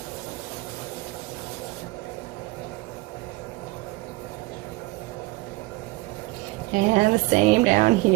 And the same down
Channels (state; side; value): quieter; left; 21.8 dB